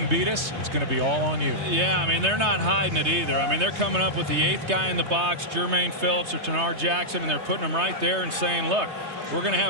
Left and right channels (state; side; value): late; left; 3.2 ms